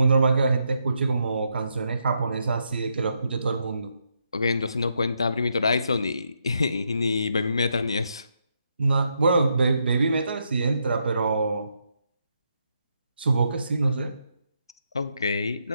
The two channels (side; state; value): both; inverted; correlation -0.79